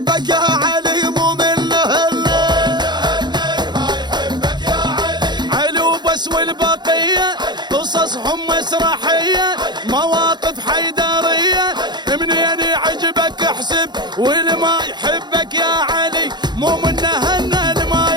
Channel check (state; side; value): late; left; 0.21 ms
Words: يا علي. مو من هنان علي وبس والبقيه قصصهم مسرحيه مواقف حيدريه منين يعجبك احسب والما يحبك يا علي. مو من هنال ما